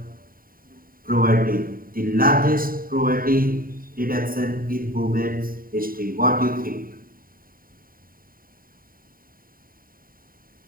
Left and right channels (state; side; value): late; left; 0.41 ms